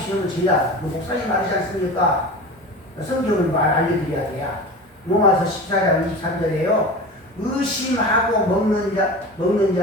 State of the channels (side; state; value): both; normal; correlation 0.32